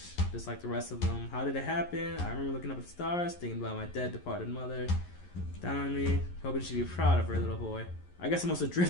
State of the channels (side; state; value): right; late; 11 ms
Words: just like the rest of them. How did it happen? I remember looking up at the stars, thinking about my dead, departed mother. Down on me, hoping she'd be proud of her little boy. I guess I must have